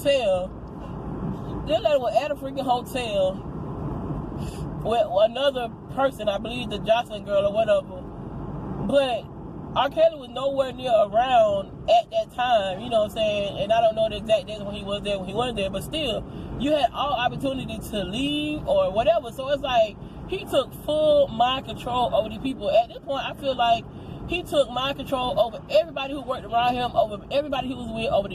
with another person, I believe the Jocelyn girl or whatever, but R. Kelly was nowhere near around at that time, you know what I'm saying, and I don't know the exact days when he was there, but still, you had all opportunity to leave or whatever, so it's like, he took full mind control over the people. At this point, I feel like he took mind control over everybody who worked around him, over everybody he was with, over the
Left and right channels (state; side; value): identical; both; correlation 1.00